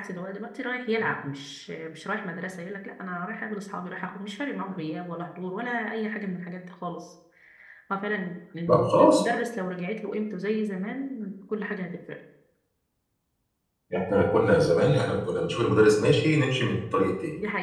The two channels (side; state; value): both; identical; correlation 1.00